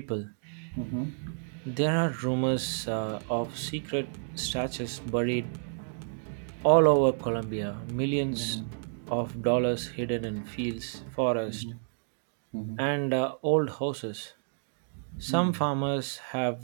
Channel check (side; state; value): left; silent; digital silence